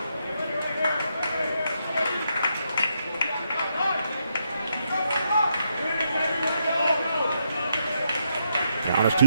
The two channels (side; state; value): both; inverted; correlation -0.79